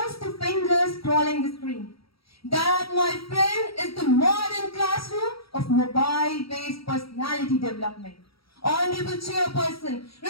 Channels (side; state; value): right; late; 0.75 ms